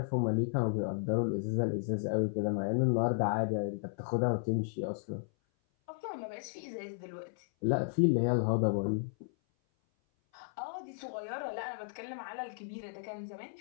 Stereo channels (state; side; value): silent; right; 55 dB below the other